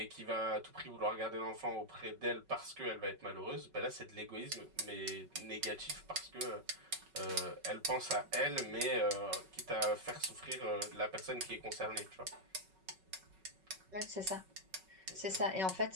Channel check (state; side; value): late; left; 5.3 ms